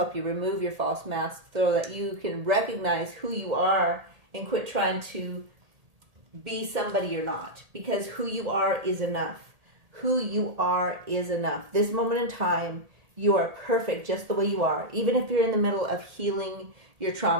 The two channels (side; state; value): left; late; 1.8 ms